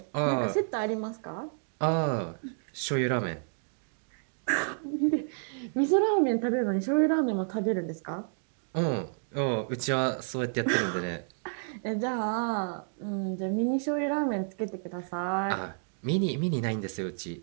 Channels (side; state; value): left; silent; digital silence